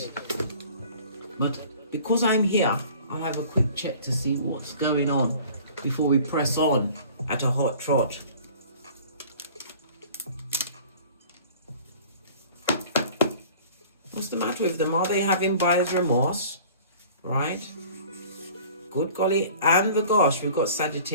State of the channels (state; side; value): inverted; both; correlation -0.47